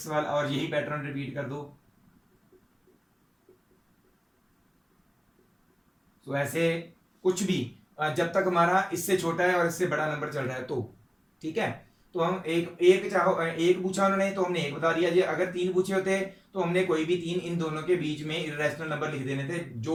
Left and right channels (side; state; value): both; identical; correlation 1.00